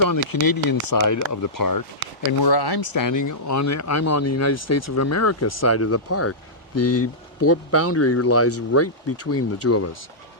on the Canadian side of the park. And where I'm standing, I'm on the United States of America side of the park. The boundary lies right between the two of us.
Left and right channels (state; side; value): normal; both; correlation -0.14